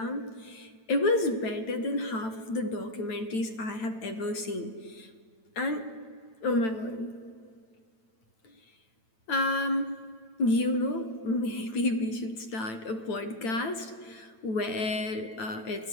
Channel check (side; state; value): right; late; 9.0 ms